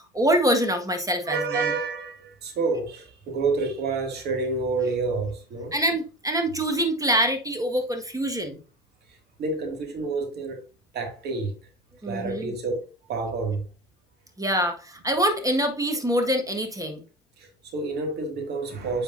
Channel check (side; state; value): both; normal; correlation 0.33